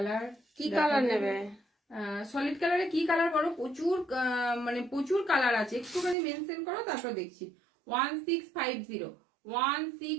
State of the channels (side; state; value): left; drops out; at 6.2 s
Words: কি কালার নেবে? সলিড কালারে কি কালার করো, প্রচুর মানে প্রচুর কালার আছে, একটুখানি মেনশন করো তারপর দেখছি। 1650